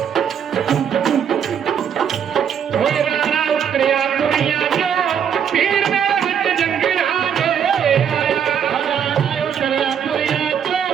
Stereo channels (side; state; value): left; quieter; 8.2 dB